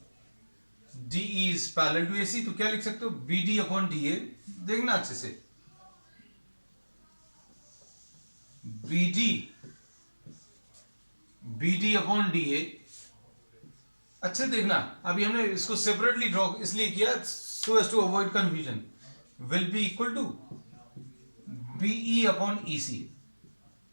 DE is parallel to AC, तो क्या लिख सकते हो? BD upon DA। देखना अच्छे से, BD अपॉन DA, अच्छे देखना। अभी हमने इसको सेपरेटली ड्रॉ इसलिए किया so as to avoid confusion. Will be equal to BE upon EC,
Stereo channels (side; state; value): both; inverted; correlation -1.00